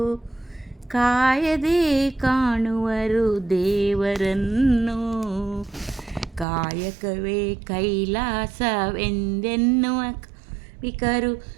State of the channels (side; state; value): left; drops out; at 6.5 s